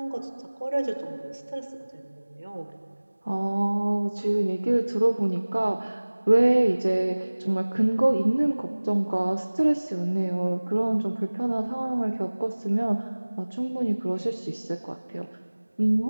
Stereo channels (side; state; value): both; inverted; correlation -1.00